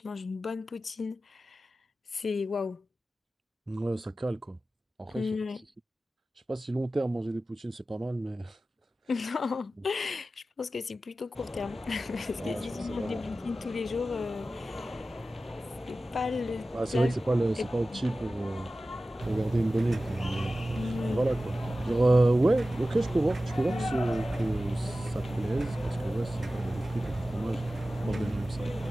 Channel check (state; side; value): normal; both; correlation 0.95